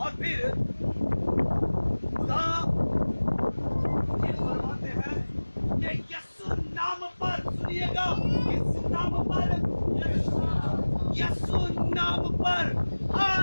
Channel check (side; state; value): both; inverted; correlation -1.00